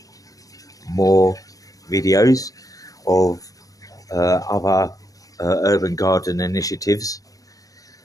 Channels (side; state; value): right; late; 0.17 ms